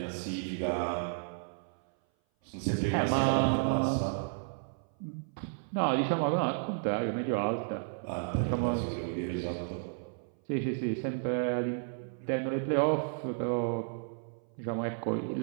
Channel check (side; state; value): left; silent; 56 dB below the other